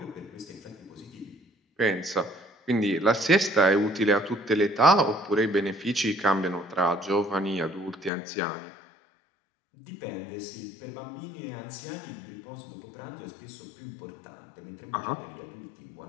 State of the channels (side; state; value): right; drops out; at 8.1 s